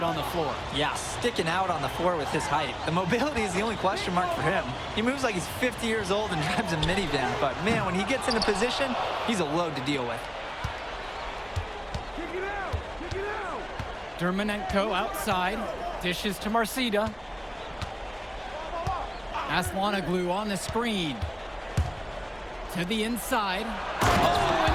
on the floor. Yeah, sticking out on the floor with his height. The mobility is the only question mark for him. He moves like he's 50 years old and drives a minivan, but man, when he gets into position, he's a load to deal with. Dermonenko outside, dishes to Marcida. Aslanoglu on the screen. To the inside. Oh,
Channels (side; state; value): both; identical; correlation 1.00